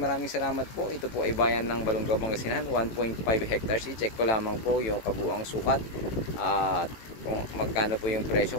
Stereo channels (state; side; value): late; right; 18 ms